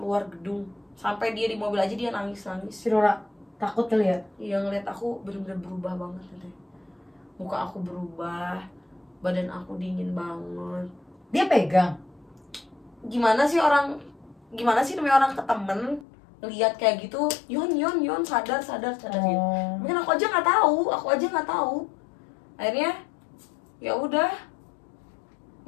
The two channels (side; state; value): right; drops out; at 16.1 s